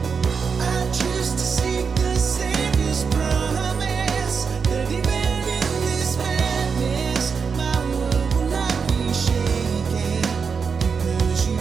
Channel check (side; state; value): left; quieter; 5.7 dB